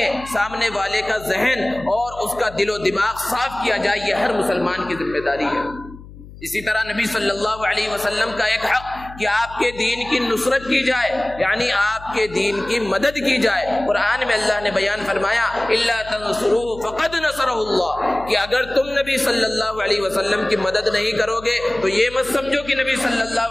ہیں. سامنے والے کا ذہن اور اس کا دل و دماغ صاف کیا جائے، یہ ہر مسلمان کی ذمہ داری ہے. اسی طرح نبی صلی اللہ علیہ وسلم کا ایک حق کہ آپ کے دین کی نصرت کی جائے، یعنی آپ کے دین کی مدد کی جائے. قرآن میں اللہ نے بیان فرمایا الا تنصروه فقد نصره اللہ، کہ اگر تم نبی صلی اللہ علیہ وسلم کی مدد نہیں کرو گے تو یہ مت سمجھو کہ نبی صلی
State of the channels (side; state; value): left; noise; hum, 17 dB below the sound